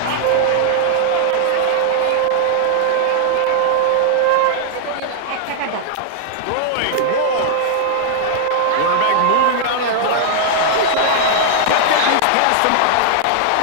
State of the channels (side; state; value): both; different; correlation -0.01